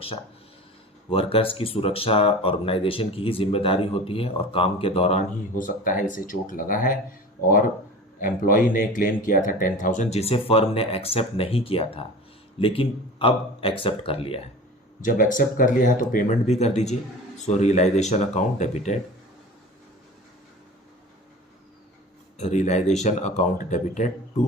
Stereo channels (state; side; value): normal; both; correlation 0.36